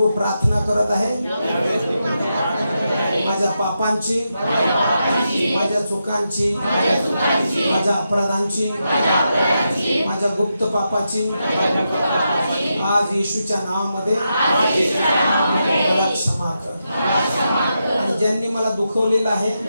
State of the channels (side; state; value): both; inverted; correlation -0.86